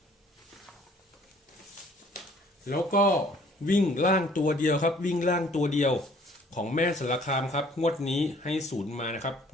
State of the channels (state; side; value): normal; both; correlation 0.57